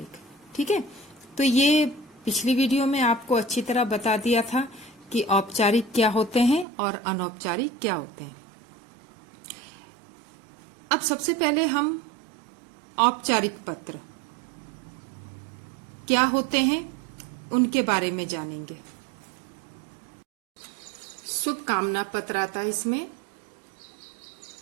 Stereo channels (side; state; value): left; drops out; at 6.7 s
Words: ठीक है, तो ये पिछली वीडियो में आपको अच्छी तरह बता दिया था कि औपचारिक क्या होते हैं और अनौपचारिक क्या होते हैं। अब सबसे पहले हम औपचारिक पत्र क्या होते हैं उनके बारे में जानेंगे। शुभकामना पत्र आता है, इसमें